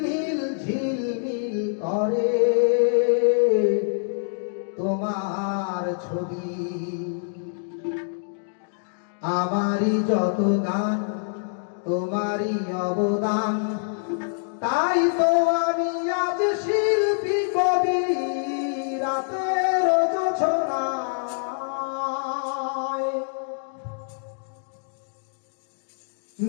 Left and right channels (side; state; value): right; silent; digital silence